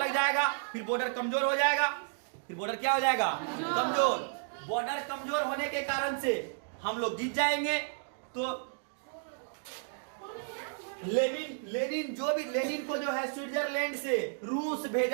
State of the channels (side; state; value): left; silent; digital silence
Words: जाएगा, फिर बॉर्डर कमजोर हो जाएगा। फिर बॉर्डर क्या हो जाएगा? कमजोर। बॉर्डर कमजोर होने के कारण से हम लोग जीत जाएंगे। तो लेनिन को जो है स्विट्जरलैंड से रूस